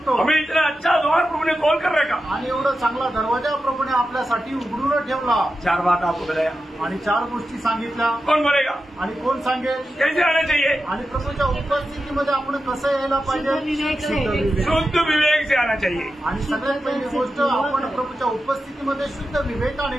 हमें इतना अच्छा द्वार प्रभु ने खोल कर रखा. आणि एवढा चांगला दरवाजा प्रभूने आपल्यासाठी उघडून ठेवला. 4 बात आपको बताया आणि 4 गोष्टी सांगितल्या. कौन बोलेगा? आणि कोण सांगेल कैसे आना चाहिए? आणि प्रभूच्या उपस्थितीमध्ये आपण कसं यायला पाहिजे. शुद्ध विवेक से आना चाहिए. आणि सगळ्यात पहिली गोष्ट आपण प्रभूच्या उपस्थितीमध्ये शुद्ध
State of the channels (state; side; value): normal; both; correlation 0.91